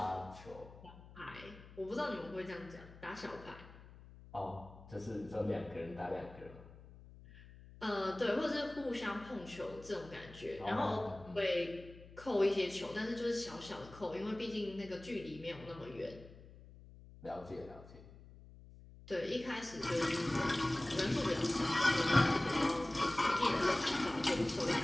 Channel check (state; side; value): noise; left; hum, 19 dB below the sound